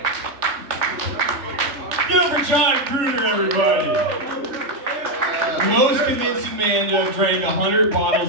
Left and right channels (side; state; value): left; late; 3.3 ms